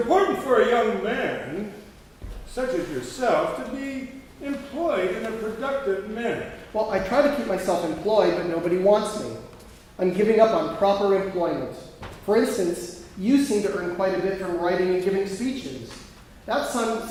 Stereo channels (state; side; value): identical; both; correlation 1.00